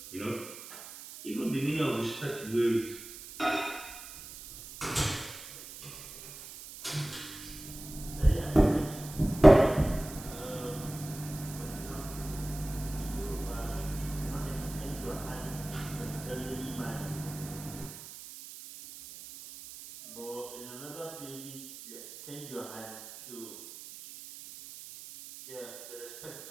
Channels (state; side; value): noise; right; hiss, 13 dB below the sound